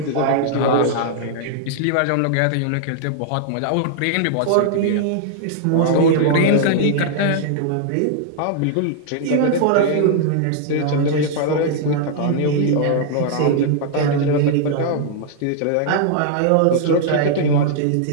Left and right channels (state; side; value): different; both; correlation -0.01